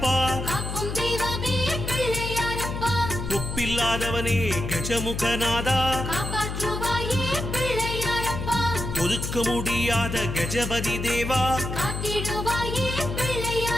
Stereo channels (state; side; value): noise; left; hum, 5 dB below the sound